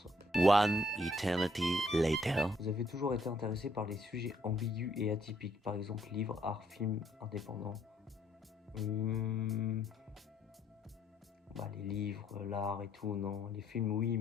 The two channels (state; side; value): normal; both; correlation 0.68